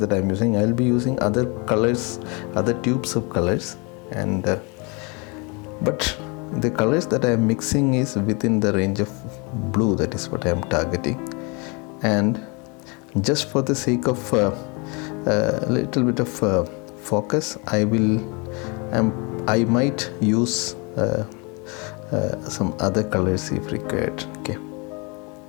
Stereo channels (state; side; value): quieter; right; 30.6 dB